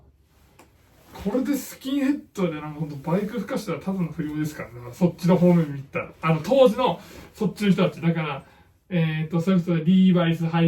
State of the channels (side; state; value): both; identical; correlation 1.00